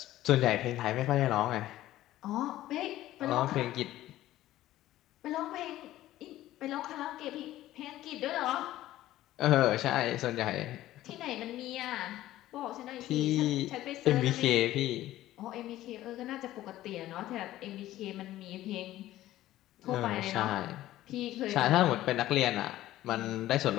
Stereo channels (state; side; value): quieter; right; 14.7 dB